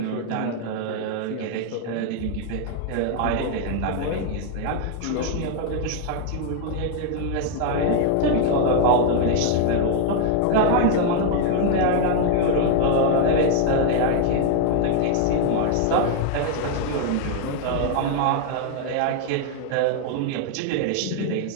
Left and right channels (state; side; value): different; both; correlation 0.00